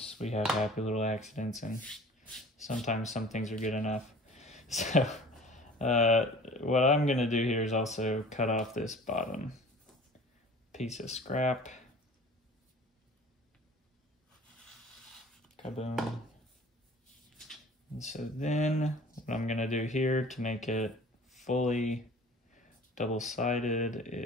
we have happy little accidents, and sometimes some things are good enough. So what I'm gonna do here is also cut off this bottom piece of scrap. Kaboom. And so then what I'm gonna do here to make it fully double-sided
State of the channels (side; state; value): both; normal; correlation 0.45